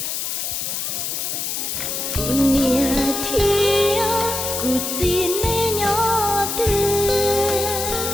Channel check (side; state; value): left; noise; hiss, 3 dB below the sound